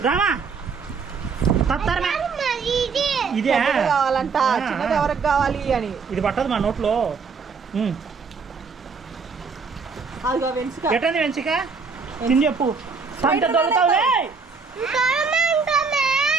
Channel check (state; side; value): quieter; left; 5.1 dB